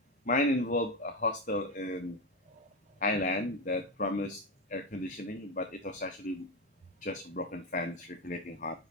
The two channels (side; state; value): both; normal; correlation 0.14